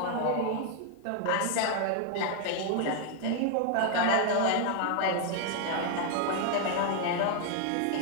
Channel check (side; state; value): both; different; correlation 0.00